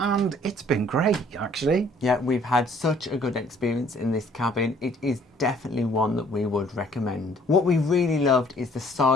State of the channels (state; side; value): normal; both; correlation 0.59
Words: it's been great actually. Yeah, we've had such a good experience in this cabin. It is definitely one that we would recommend. What we really loved is the